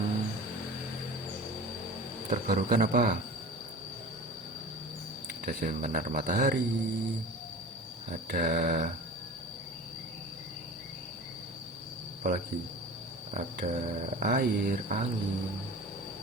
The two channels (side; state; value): both; normal; correlation 0.36